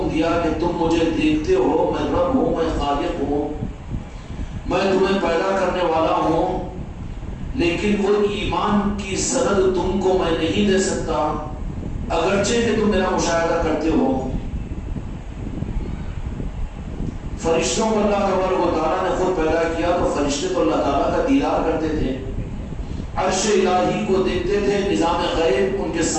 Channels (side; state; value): both; identical; correlation 1.00